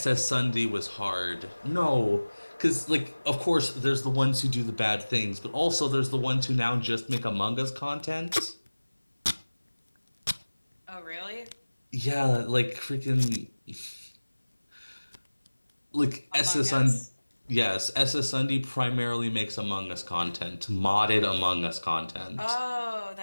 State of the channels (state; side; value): inverted; both; correlation -1.00